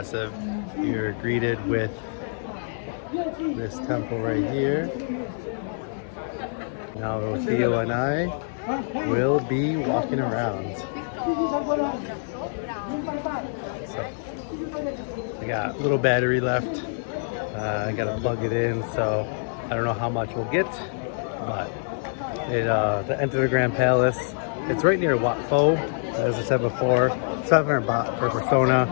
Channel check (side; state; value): right; silent; digital silence